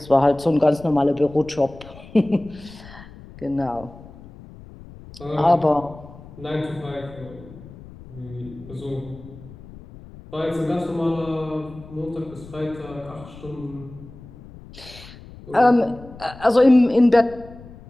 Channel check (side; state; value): left; noise; rumble, 18 dB below the sound